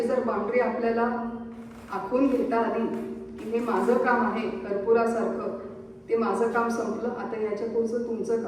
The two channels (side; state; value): both; identical; correlation 1.00